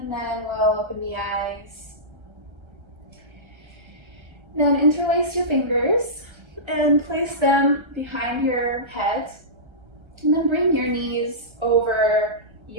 then we'll open the eyes. Then interlace your fingers and place them behind your head. And then bring your knees over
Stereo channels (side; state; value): left; late; 1.3 ms